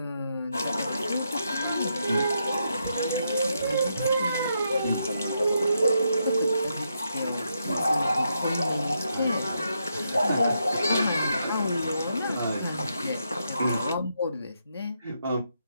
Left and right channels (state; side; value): inverted; both; correlation -0.81